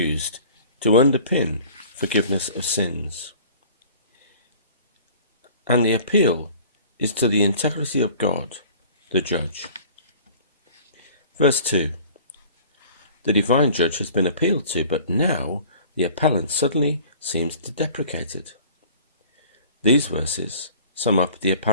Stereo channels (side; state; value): both; inverted; correlation -0.47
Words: to underpin forgiveness of sins. And the appeal is to the integrity of God, the judge. Verse 2. The divine judge has been appealed to, but now the appellant suddenly seems to deprecate it. These verses sum up the